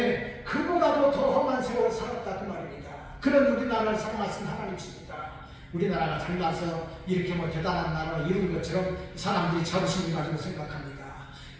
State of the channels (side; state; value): both; identical; correlation 1.00